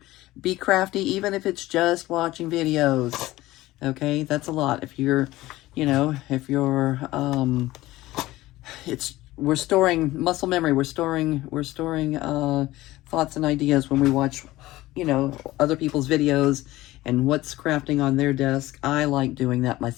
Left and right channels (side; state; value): right; quieter; 17.4 dB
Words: be crafty, even if it's just watching videos. Okay, that's a lot. If you're, we're storing muscle memory. We're storing thoughts and ideas when we watch, other people's videos and what's crafting on their desk. I like doing that